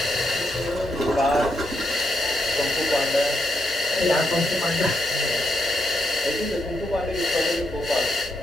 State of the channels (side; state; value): both; normal; correlation 0.81